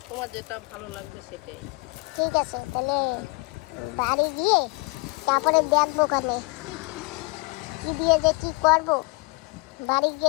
তোমার যেটা ভালো লাগবে সেটাই। ঠিক আছে, তাহলে বাড়ি গিয়ে তারপরে দেখবো ওখানে কি দিয়ে যে কি করবো। বাড়ি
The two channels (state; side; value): quieter; right; 28.3 dB